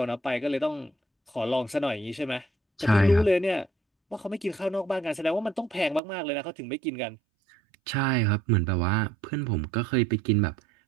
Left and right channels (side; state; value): left; drops out; at 6.0 s